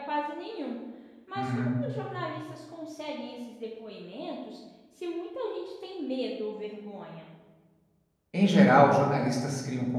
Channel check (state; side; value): identical; both; correlation 1.00